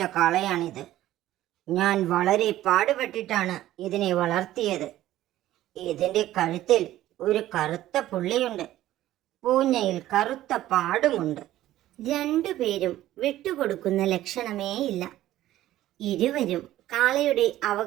കാളയാണിത്. ഞാൻ വളരെ പാടുപെട്ടിട്ടാണ് ഇതിനെ വളർത്തിയത്. ഇതിന്റെ കഴുത്തിൽ ഒരു കറുത്ത പുള്ളിയുണ്ട്, പൂഞ്ഞയിൽ കറുത്ത പാടുമുണ്ട്. രണ്ടുപേരും വിട്ടുകൊടുക്കുന്ന ലക്ഷണമേയില്ല. ഇരുവരും കാളയുടെ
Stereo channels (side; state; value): left; quieter; 14.2 dB